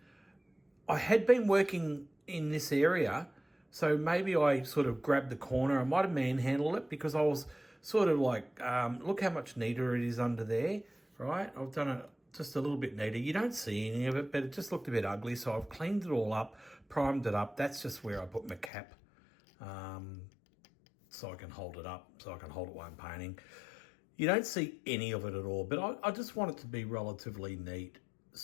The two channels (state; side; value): drops out; right; at 18.7 s